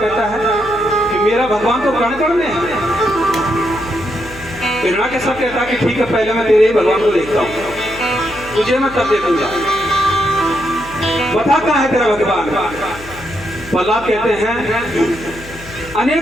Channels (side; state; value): left; noise; hum, 17 dB below the sound